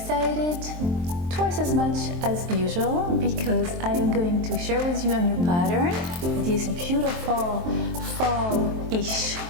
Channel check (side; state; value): left; late; 23 ms